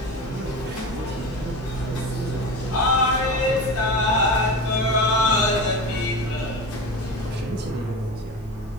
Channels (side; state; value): both; normal; correlation 0.27